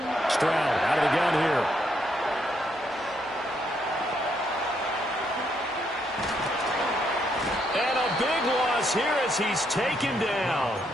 Stroud out of the gun here. And a big loss here as he's taken down.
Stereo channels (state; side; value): normal; both; correlation 0.75